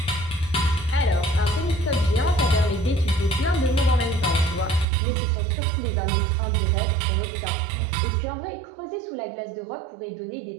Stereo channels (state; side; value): drops out; left; at 4.9 s